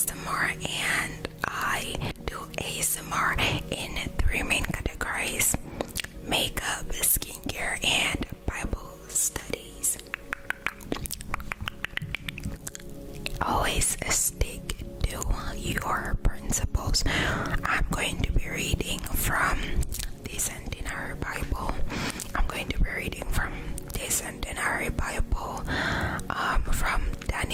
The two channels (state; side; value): identical; both; correlation 1.00